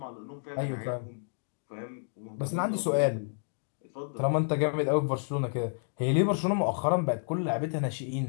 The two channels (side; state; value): right; silent; digital silence